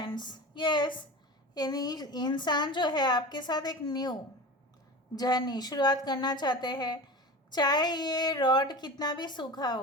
यस, यानी इंसान जो है आपके साथ एक न्यू जर्नी शुरुआत करना चाहते हैं। चाहे ये रॉड कितना भी सूखा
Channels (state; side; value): normal; both; correlation 0.31